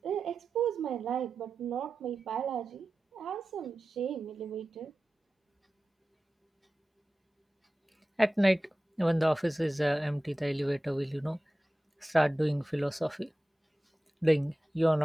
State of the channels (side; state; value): both; normal; correlation 0.94